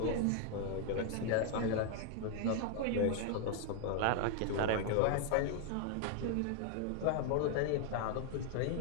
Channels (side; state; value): both; different; correlation 0.00